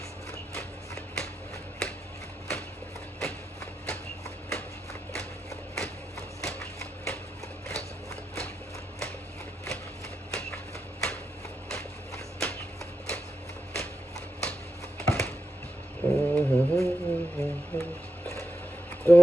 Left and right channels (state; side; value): normal; both; correlation 0.88